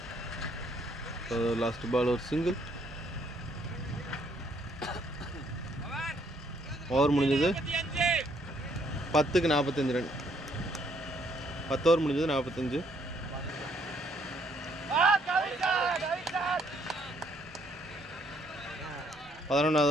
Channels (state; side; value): normal; both; correlation 0.69